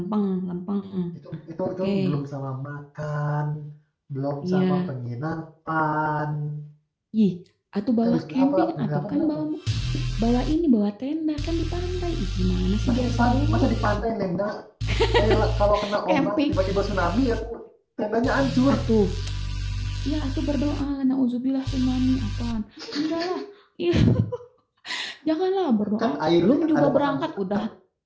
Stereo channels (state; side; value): identical; both; correlation 1.00